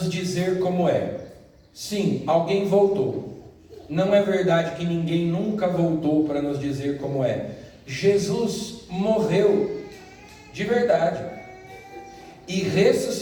dizer como é. Sim, alguém voltou. Não é verdade que ninguém nunca voltou para nos dizer como é. Jesus morreu de verdade e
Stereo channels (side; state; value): both; identical; correlation 1.00